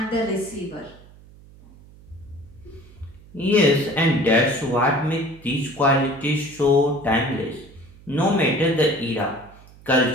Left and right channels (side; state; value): right; noise; hum, 23 dB below the sound